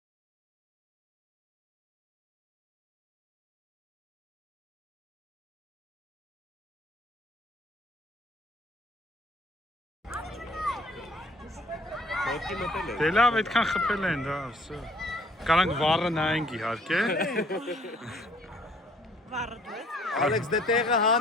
Ոտքի մտել է։ Դե լավ, այդքան խփել են, դա, վсё։ Կարանք վառը նայենք իհարկե։ Ալեքս դե տեղը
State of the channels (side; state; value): both; normal; correlation 0.60